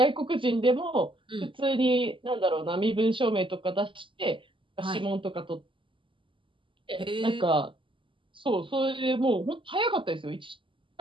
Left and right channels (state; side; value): late; left; 0.25 ms